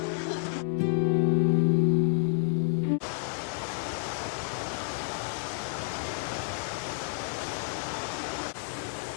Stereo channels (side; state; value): right; silent; 58 dB below the other